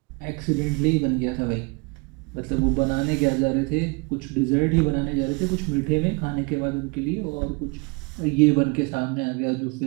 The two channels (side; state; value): left; quieter; 29.6 dB